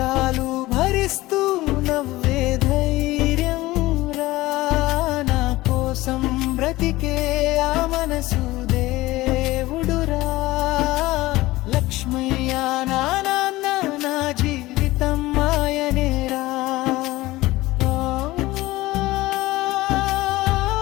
భరిస్తూ నవ్వే ధైర్యం రా. నా కోసం బ్రతికే ఆ మనసు దేవుడురా. లక్ష్మయ్య నా నాన్న నా జీవితం ఆయనేరా.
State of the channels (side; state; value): right; quieter; 18.6 dB